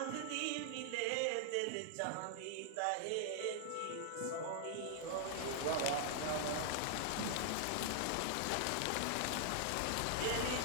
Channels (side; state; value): both; different; correlation -0.01